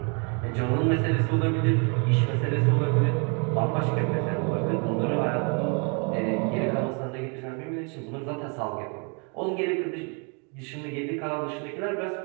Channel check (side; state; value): left; quieter; 35.7 dB